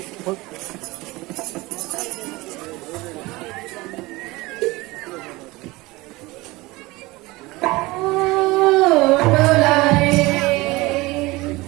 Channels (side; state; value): left; quieter; 21.5 dB